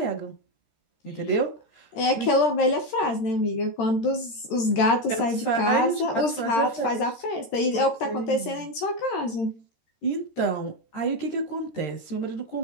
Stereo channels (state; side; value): late; right; 13 ms